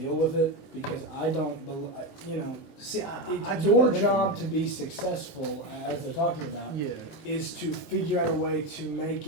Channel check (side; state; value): right; late; 19 ms